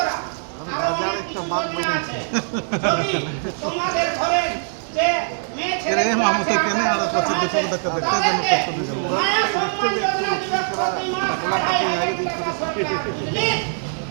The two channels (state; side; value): silent; left; digital silence